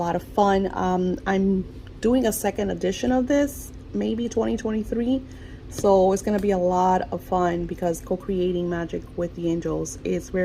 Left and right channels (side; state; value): both; identical; correlation 1.00